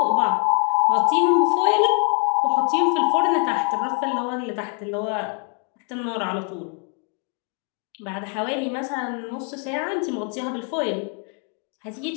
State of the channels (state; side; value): quieter; right; 39.5 dB